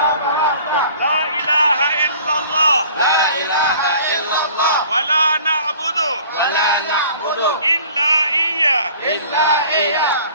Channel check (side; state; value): both; inverted; correlation -0.50